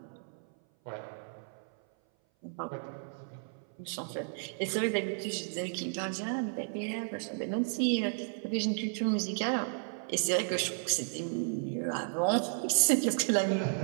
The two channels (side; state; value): left; silent; 56 dB below the other